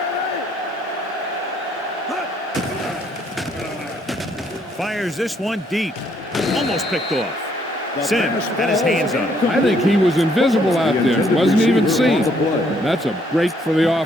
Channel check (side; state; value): both; normal; correlation 0.68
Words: Fires this one deep. Almost picked off. Sims had his hands on it. I think he was invisible out there. Wasn't even seen. That's a break for the